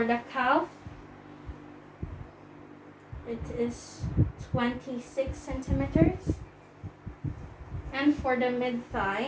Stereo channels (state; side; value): identical; both; correlation 1.00